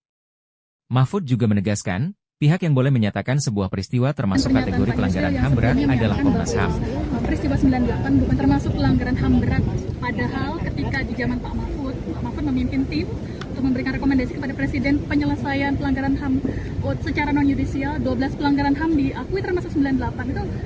Mahfud juga menegaskan, pihak yang boleh menyatakan sebuah peristiwa termasuk kategori pelanggaran HAM berat adalah Komnas HAM. Peristiwa 98 bukan termasuk pelanggaran HAM berat, padahal ketika di zaman Pak Mahfud memimpin tim untuk memberikan rekomendasi kepada Presiden penyelesaian pelanggaran HAM secara non-yudisial, 12 pelanggaran HAM diakui termasuk 98. Itu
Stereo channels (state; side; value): identical; both; correlation 1.00